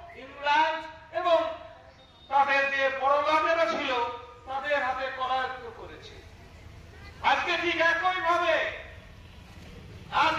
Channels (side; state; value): both; identical; correlation 1.00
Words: ইংল্যান্ড এবং তাদের যে পরগামেরা ছিল তাদের হাতে করায়ত্ত করেছে। আজকে ঠিক একই ভাবে